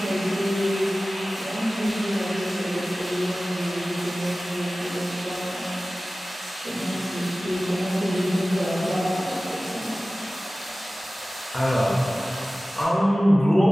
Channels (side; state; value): both; normal; correlation 0.97